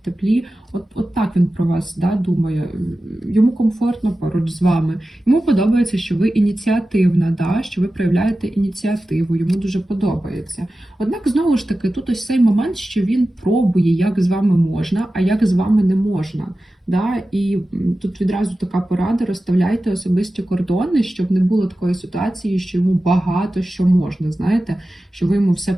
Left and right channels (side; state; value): both; normal; correlation 0.94